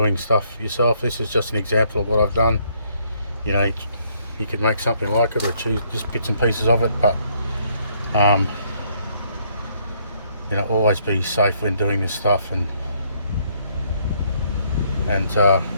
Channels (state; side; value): inverted; both; correlation -0.69